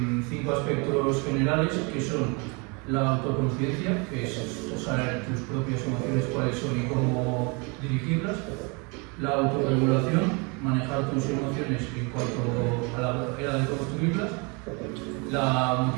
5 aspectos generales que son la autoconciencia, que es saber tus propias emociones cuáles son y cómo dirigirlas, la autorregulación, manejar tus emociones en cuanto a la manera de construirlas, la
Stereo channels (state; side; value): quieter; left; 31.1 dB